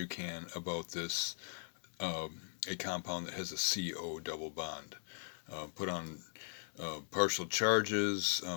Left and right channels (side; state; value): right; silent; digital silence